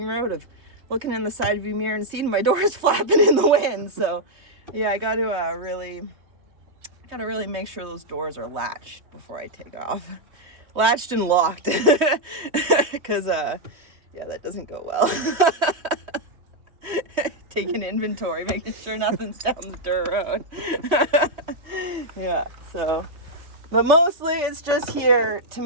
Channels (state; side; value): late; left; 3.2 ms